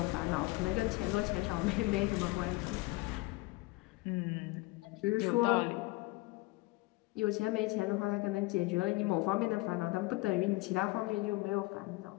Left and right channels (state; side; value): quieter; right; 21.4 dB